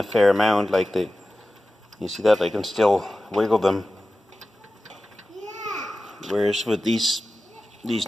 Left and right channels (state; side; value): normal; both; correlation 0.95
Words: fair amount, like you see that I can still wiggle them, whereas with these